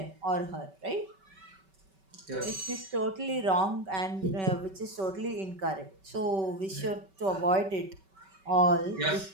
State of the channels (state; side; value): late; left; 5.2 ms